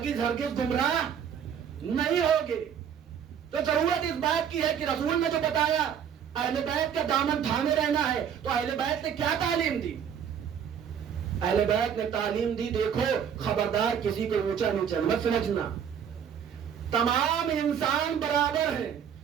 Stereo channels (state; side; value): quieter; left; 8.2 dB